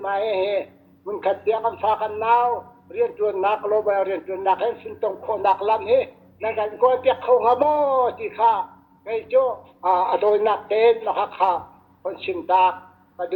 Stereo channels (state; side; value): identical; both; correlation 1.00